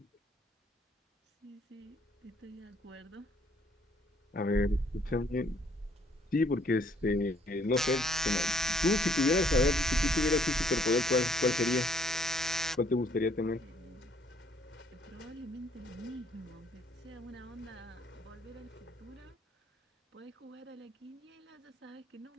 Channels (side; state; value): both; normal; correlation 0.65